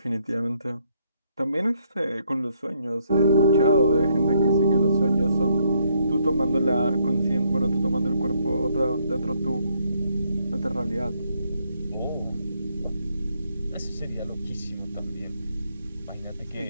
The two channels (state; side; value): inverted; both; correlation -0.72